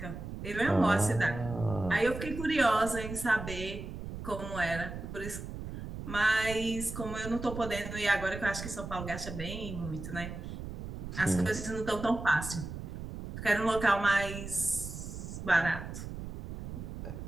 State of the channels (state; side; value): noise; right; rumble, 8 dB below the sound